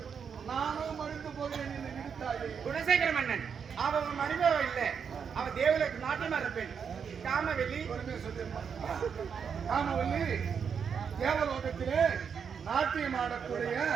நானும் மருந்து போகிறேன் என்று விடுத்தாயே. குணசேகர மன்னன், அவன் மருமக இல்லை, அவன் தேவலுக்கு நாட்டியமா இருப்பேன். காமவெளி காமவல்லி தேவலோகத்திலே நாட்டியம் ஆடக்கூடிய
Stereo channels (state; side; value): quieter; left; 6.8 dB